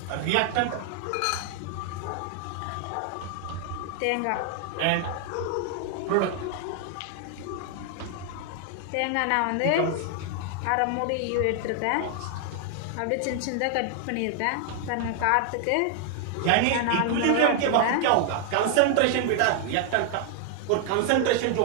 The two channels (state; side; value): different; both; correlation 0.00